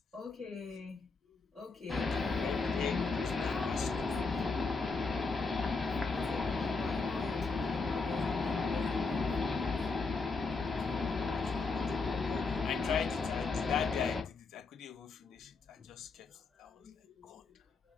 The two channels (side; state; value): right; quieter; 4.2 dB